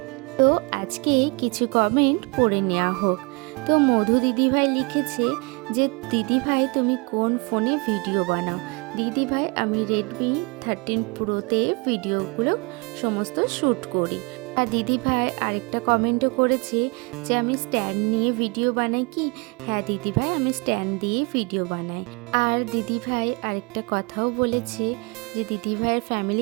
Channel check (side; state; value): left; quieter; 29.7 dB